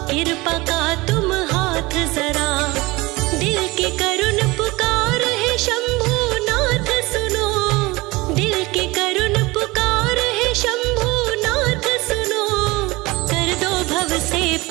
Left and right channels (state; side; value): quieter; left; 22.2 dB